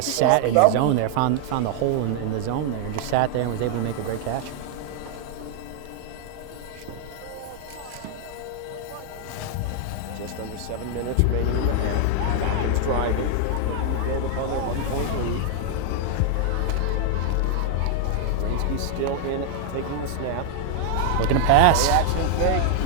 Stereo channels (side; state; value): both; different; correlation 0.00